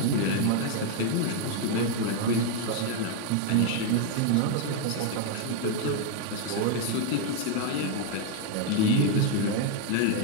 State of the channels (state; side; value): different; both; correlation 0.01